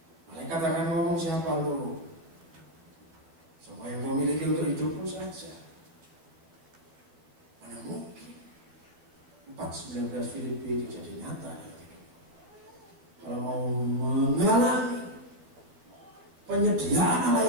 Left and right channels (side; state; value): left; late; 12 ms